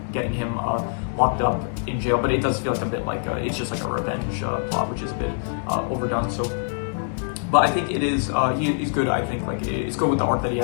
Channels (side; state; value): right; silent; 62 dB below the other